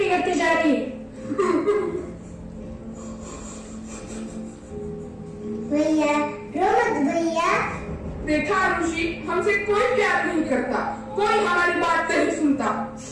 जा रही है। भैया रो मत भैया। देखा आरुषि, हमसे कोई प्यार नहीं करता, कोई हमारी बात नहीं सुनता।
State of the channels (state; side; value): identical; both; correlation 1.00